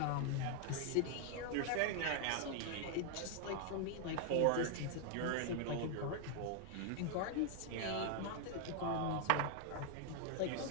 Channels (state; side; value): different; both; correlation 0.00